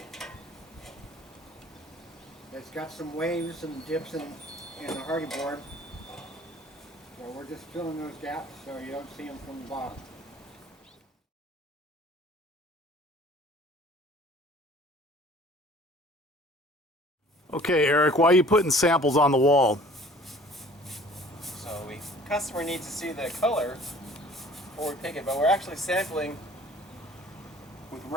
It's got some waves and dips in the Hardie board. So we're just filling those gaps so you don't see them from the bottom. Okay, Eric, why are you putting samples on the wall? So the customer needs to see the color before we pick it, but we're actually sampling with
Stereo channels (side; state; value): both; normal; correlation 0.51